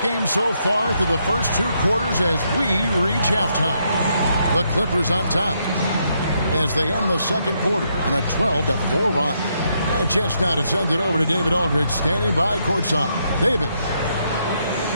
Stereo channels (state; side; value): inverted; both; correlation -0.77